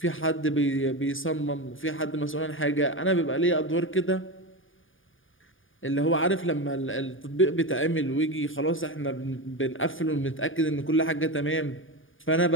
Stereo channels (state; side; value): late; right; 0.58 ms